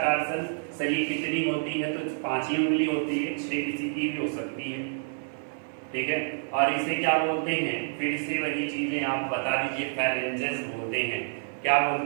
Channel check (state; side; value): silent; left; digital silence